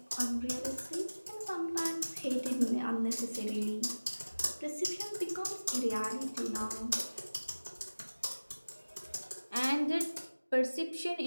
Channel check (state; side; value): inverted; both; correlation -1.00